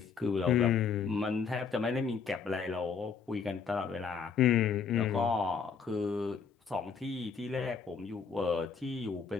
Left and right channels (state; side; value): quieter; right; 5.9 dB